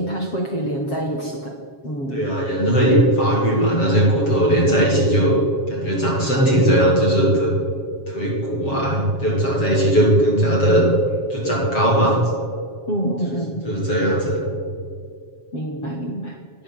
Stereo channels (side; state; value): right; late; 7.3 ms